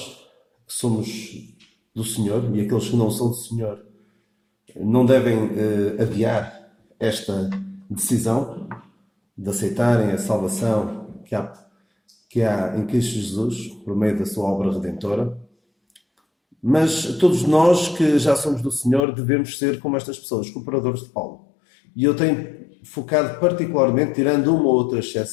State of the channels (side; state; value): right; drops out; at 19.0 s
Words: que somos do Senhor e aqueles que não são do Senhor não devem adiar esta decisão de aceitarem a salvação que há em Cristo Jesus por meio da sua obra redentora. Mas todos nós que já somos do Senhor devemos ser como estas pessoas, cooperadores de Paulo. E eu tenho focado particularmente, tirando uma ou outra